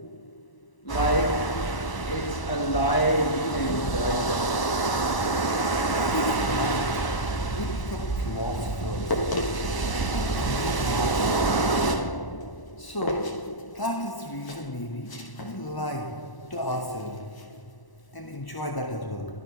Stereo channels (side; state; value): right; late; 1.0 ms